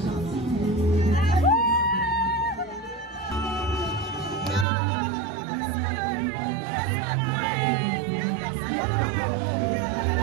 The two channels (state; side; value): drops out; left; at 4.7 s